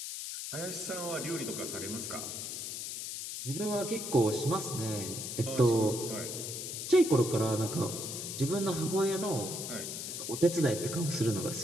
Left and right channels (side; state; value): left; noise; hiss, 6 dB below the sound